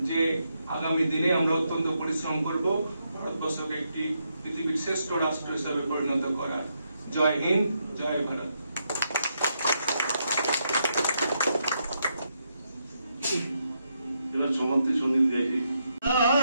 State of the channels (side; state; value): both; inverted; correlation -0.80